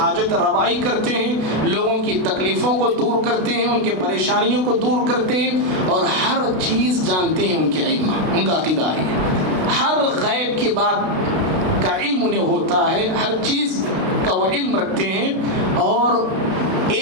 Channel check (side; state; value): left; late; 32 ms